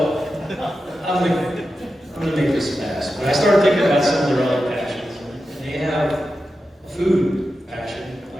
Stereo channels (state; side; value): normal; both; correlation 0.91